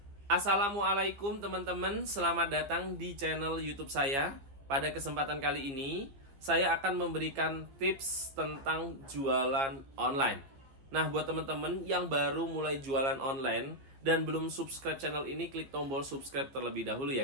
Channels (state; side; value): late; left; 15 ms